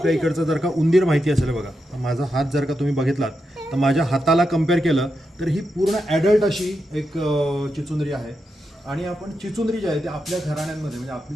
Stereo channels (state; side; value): normal; both; correlation 0.86